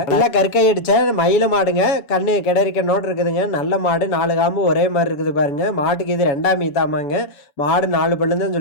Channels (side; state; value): right; late; 7.1 ms